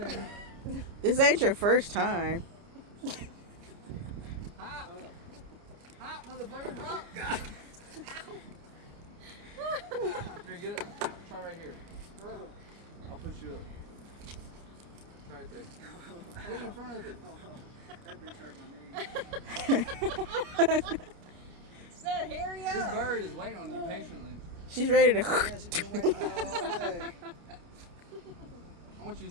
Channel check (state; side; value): late; left; 29 ms